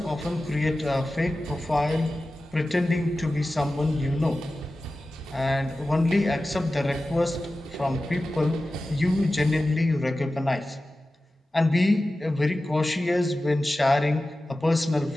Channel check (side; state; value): both; normal; correlation 0.95